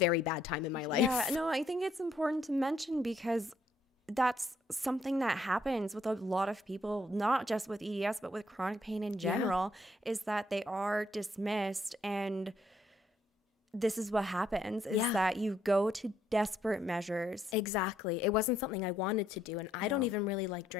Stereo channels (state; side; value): normal; both; correlation 0.71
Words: bad time in my life. Yeah, no, I think it's important to mention because that's something that happens with a lot of people, not just with EDS, but with chronic pain in general, is that they are dismissed. And this is what happens, is that you go to desperate measures. Exactly. It wasn't something I wanted to do. And I don't even really like